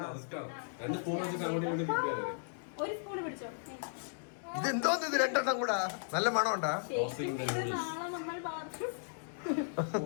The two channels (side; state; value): right; silent; digital silence